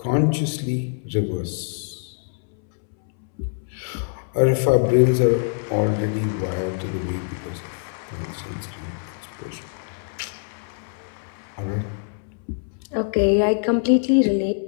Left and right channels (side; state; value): right; silent; 63 dB below the other